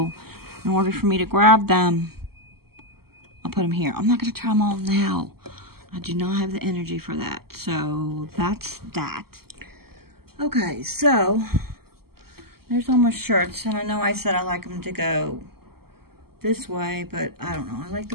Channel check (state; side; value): late; left; 0.95 ms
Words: in order for me to grab them, I'll put them here. I'm not going to try them on now. I do not have the energy for that. So, that's that. Okay, so there's all my shirts, and I know I said I like them to go this way, but I don't know. I like